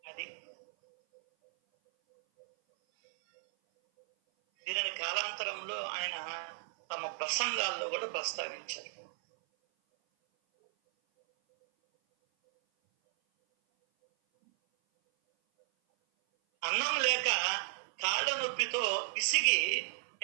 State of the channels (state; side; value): silent; left; 55 dB below the other